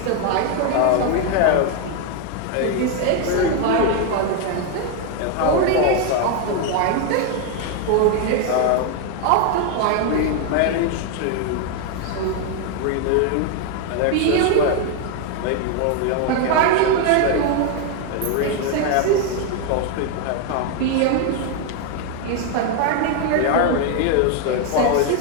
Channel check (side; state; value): both; different; correlation 0.01